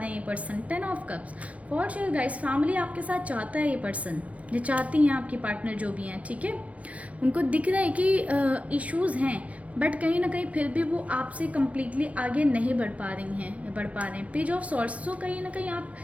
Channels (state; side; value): late; left; 0.066 ms